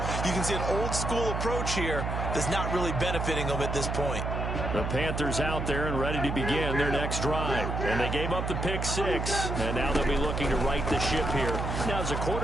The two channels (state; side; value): noise; right; hum, 2 dB below the sound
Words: you can see an old school approach here that's not really benefiting them at this point. The Panthers out there and ready to begin their next drive. And they gave up the pick 6. And now they'll be looking to right the ship here. Now, as a